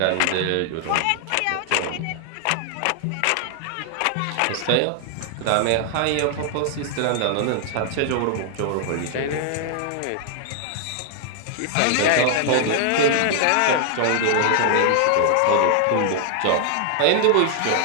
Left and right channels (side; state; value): both; different; correlation 0.00